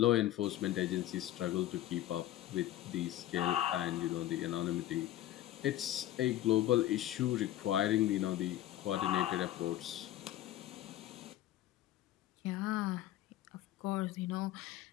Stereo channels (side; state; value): right; quieter; 13.7 dB